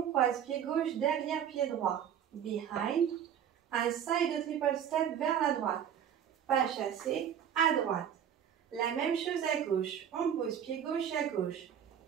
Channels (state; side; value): quieter; left; 9.0 dB